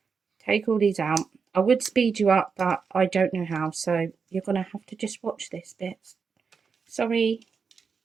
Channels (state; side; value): quieter; left; 5.6 dB